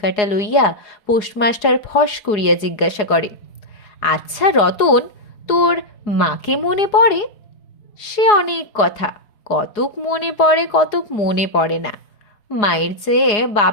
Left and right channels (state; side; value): late; right; 4.8 ms